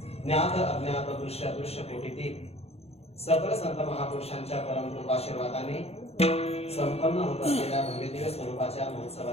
ज्ञात अज्ञात दृश्य अदृश्य कोटीतील सकल संत महापुरुषांच्या परम कृपाशीर्वादाने संपन्न होत असलेल्या भव्यदिव्य स्वरूपाच्या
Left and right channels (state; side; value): late; right; 0.30 ms